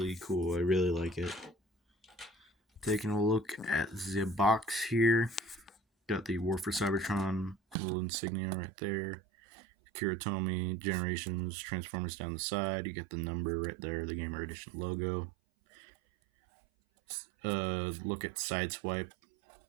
cool, I really like it. Taking a look at the box here, got the War for Cybertron little insignia right there. Kiritomi, Generations, Transformers down the side, you get the number right there, the Gamer Edition logo. Look at Sideswipe,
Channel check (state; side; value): drops out; left; at 7.8 s